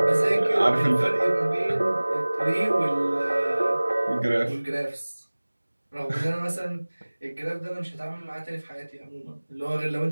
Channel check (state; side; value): inverted; both; correlation -1.00